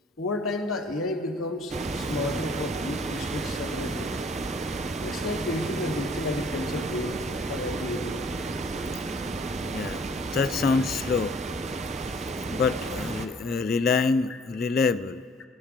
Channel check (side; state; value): both; normal; correlation 0.56